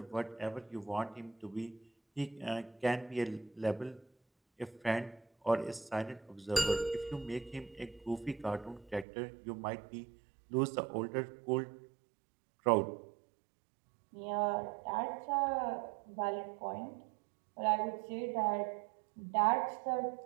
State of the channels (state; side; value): drops out; left; at 9.1 s